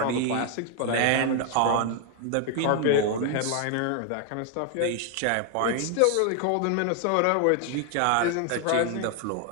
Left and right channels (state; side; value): different; both; correlation 0.00